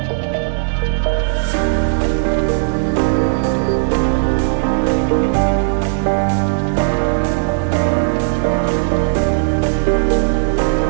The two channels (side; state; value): left; silent; digital silence